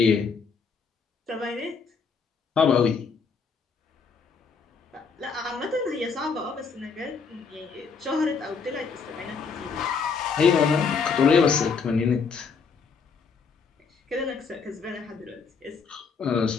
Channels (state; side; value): quieter; right; 5.4 dB